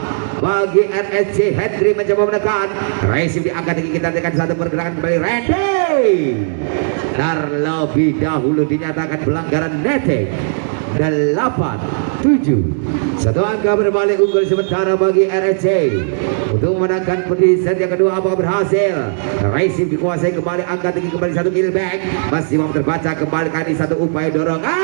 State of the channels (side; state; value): left; silent; digital silence